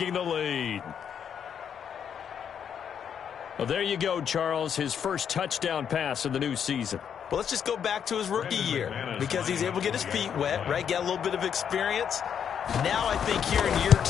the lead. Well, there you go, Charles, his first touchdown pass of the new season. Well, let's just go back to his rookie year because he's able to get his feet wet, right? Get a little bit of experience. Now I think here in year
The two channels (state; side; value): quieter; right; 8.1 dB